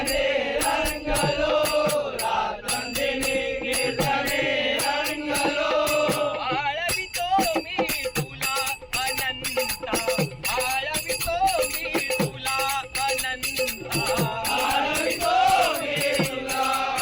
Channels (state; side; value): identical; both; correlation 1.00